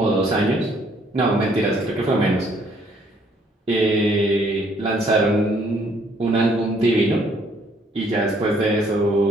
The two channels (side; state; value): both; normal; correlation 0.65